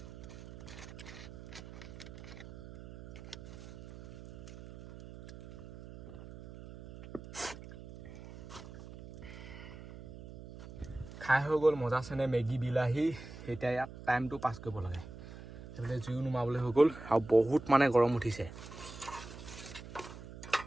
খাই হৈ গ'ল মজা চেনে মেগী বিলাহী এতিয়া ইয়াত টাইমটো পাছ কৰিব লাগে সেইফালে জুইও নুমাবলৈ হৈ গ'ল আৰু বহুত মানে গৰম উঠিছে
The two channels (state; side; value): noise; right; hum, 14 dB below the sound